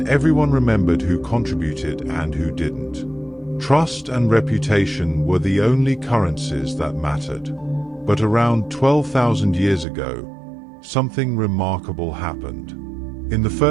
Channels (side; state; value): left; drops out; at 9.9 s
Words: everyone remembered who contributed and who didn't. Trust and reputation were the only currencies that mattered. But around 12,000 years ago, something remarkable happened. In the